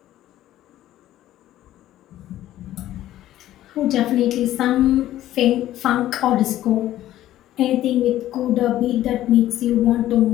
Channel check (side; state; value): right; quieter; 13.6 dB